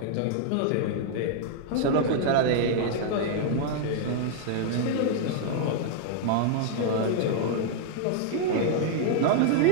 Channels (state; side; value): different; both; correlation -0.01